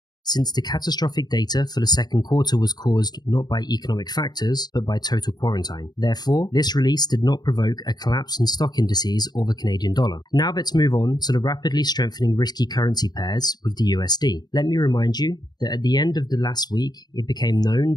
since the catastrophic data for the second quarter was caused not by economic factors, but by total quarantine. Therefore, this release did not provoke a collapse in stock indices or the Canadian dollar. Now let's move on to the rapidly strengthening risky currency pairs with the USD. Let me remind you that at the end of the last week, it became known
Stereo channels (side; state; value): right; late; 0.20 ms